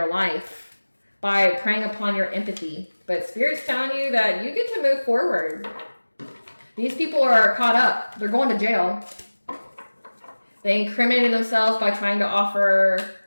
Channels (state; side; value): inverted; both; correlation -1.00